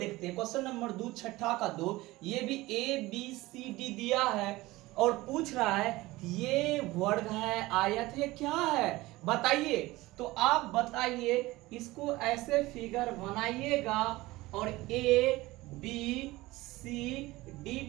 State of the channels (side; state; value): left; quieter; 19.4 dB